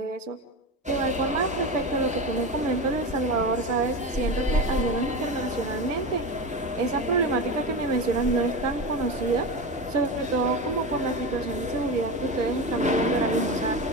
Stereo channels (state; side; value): normal; both; correlation 0.22